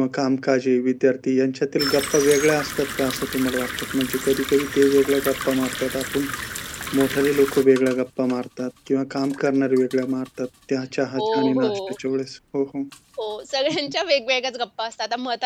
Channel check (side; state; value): both; identical; correlation 1.00